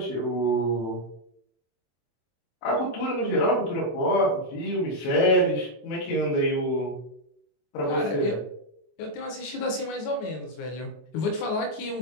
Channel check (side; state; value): right; late; 24 ms